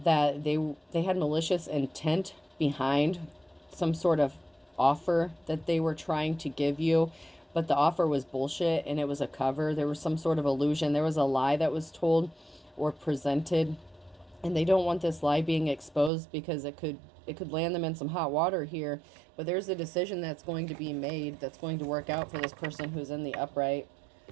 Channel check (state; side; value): drops out; left; at 16.1 s